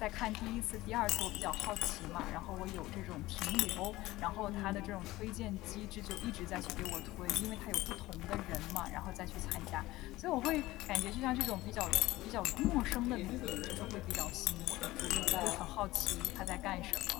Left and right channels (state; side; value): quieter; right; 18.0 dB